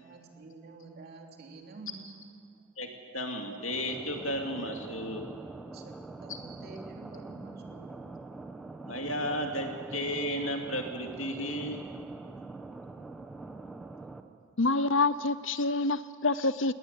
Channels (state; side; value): normal; both; correlation -0.06